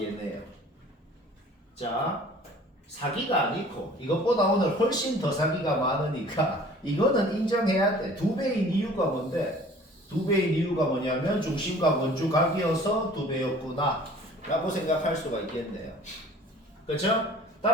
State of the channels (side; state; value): both; normal; correlation 0.49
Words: 얘네요. 자, 사기가 아니고 이것보다 오늘 훨씬 더 사기가 많으니까 이거는 인정해야 돼. 2배인 이유가 뭔데? 2배인 이유가 뭐냐면 중심각 원주각이어서 2배였구나 라고 생각할 수가 있겠네요. 그렇죠?